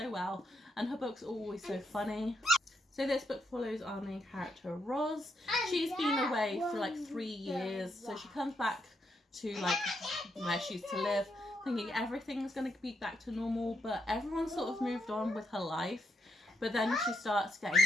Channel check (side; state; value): both; normal; correlation 0.79